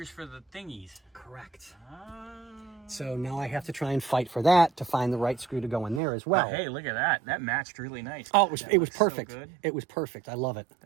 for the thingies. Correct. Oh. So now I have to try and fight for that to find the right screw to go in there as well. Oh, hey, look at that. That matched really nice. Oh, it was so perfect. good. It was perfect. I love it.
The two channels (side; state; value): left; drops out; at 6.0 s